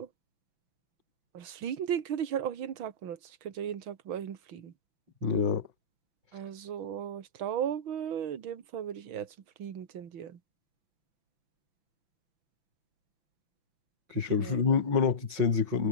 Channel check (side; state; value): left; late; 5.9 ms